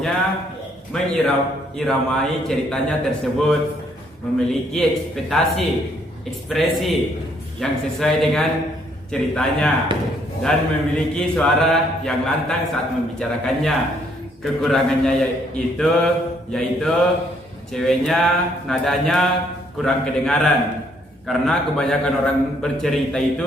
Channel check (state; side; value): normal; both; correlation 0.68